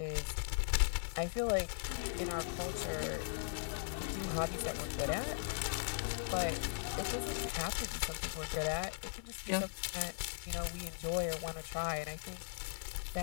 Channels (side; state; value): right; silent; digital silence